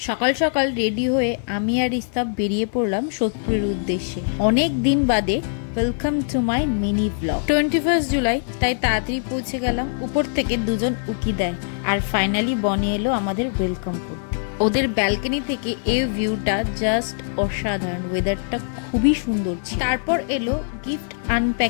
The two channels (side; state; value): right; silent; 57 dB below the other